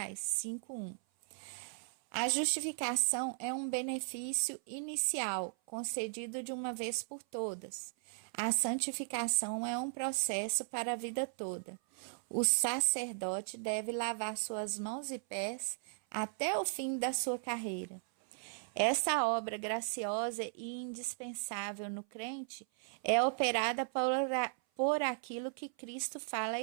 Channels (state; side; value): silent; left; 53 dB below the other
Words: 5:1. A justificação é um benefício inicial, concedido de uma vez por todas. A santificação é um processo para a vida toda. O sacerdote deve lavar suas mãos e pés até o fim da sua carreira. Essa obra graciosa e indispensável no crente é operada por aquilo que Cristo fala à